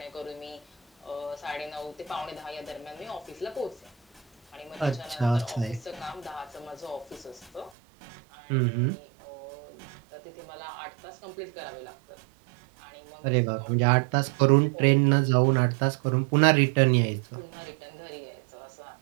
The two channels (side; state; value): left; drops out; at 7.7 s